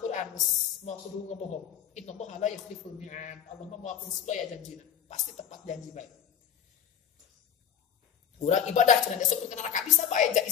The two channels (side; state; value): right; quieter; 8.7 dB